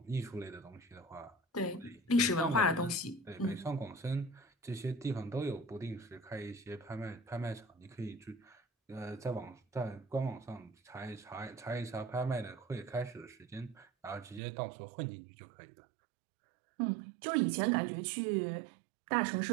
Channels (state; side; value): drops out; left; at 14.4 s